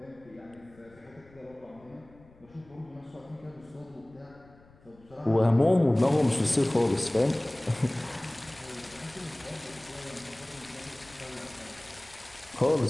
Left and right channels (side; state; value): left; noise; rumble, 26 dB below the sound